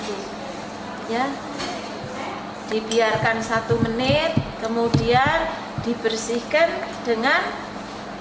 ya. Dibiarkan 1 menit, kemudian dibersihkan dengan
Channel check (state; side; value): identical; both; correlation 1.00